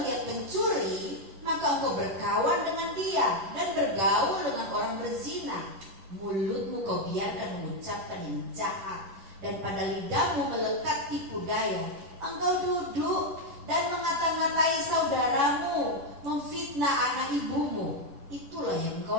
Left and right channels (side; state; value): left; late; 11 ms